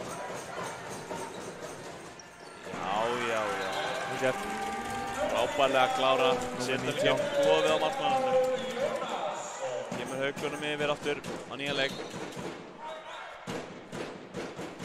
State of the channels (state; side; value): identical; both; correlation 1.00